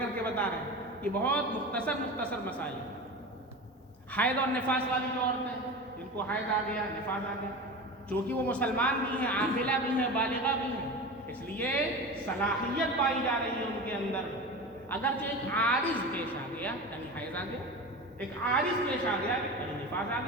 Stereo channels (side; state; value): both; normal; correlation 0.29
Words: کے بتا رہے ہیں کہ بہت مختصر مسائل ہیں. حیض اور نفاس والی جو عورتیں جن کو حیض آ گیا، نفاس آ گیا، چونکہ وہ مسلمان بھی ہیں، عاقلہ بھی ہیں، بالغہ بھی ہیں، اس لیے صلاحیت پائی جا رہی ہے ان کے اندر. اگرچہ ایک عارض پیش آ گیا یعنی حیض آ گیا ایک عارض پیش آ گیا، کہیں نفاذ آ